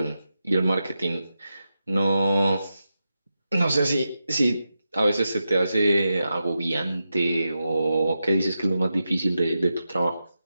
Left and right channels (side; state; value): both; inverted; correlation -0.89